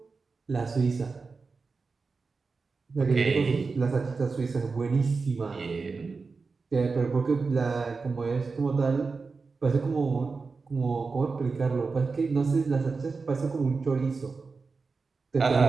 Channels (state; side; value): quieter; left; 4.4 dB